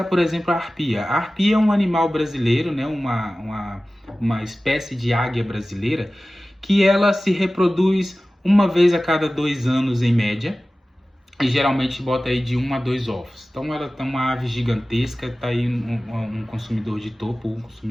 por exemplo, a arpia. A arpia é um animal brasileiro, né? Uma espécie de águia brasileira, que ela se reproduz uma vez a cada 2 anos em média, e geralmente bota aí de 1 a 2 ovos. Então ela é uma ave gigantesca, tá aí um consumidor de topo, um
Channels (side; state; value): both; normal; correlation 0.96